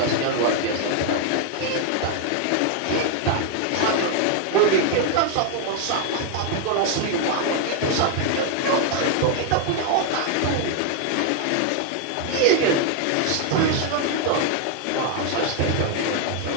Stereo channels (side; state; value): both; different; correlation 0.00